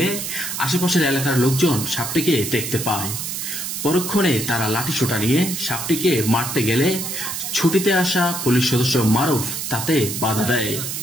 আশেপাশের এলাকার লোকজন সাপটিকে দেখতে পায়। পরক্ষণে তারা লাঠিসোঁটা নিয়ে সাপটিকে মারতে গেলে ছুটিতে আসা পুলিশ সদস্য মারুফ তাতে বাধা দেয়।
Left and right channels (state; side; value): noise; right; hiss, 5 dB below the sound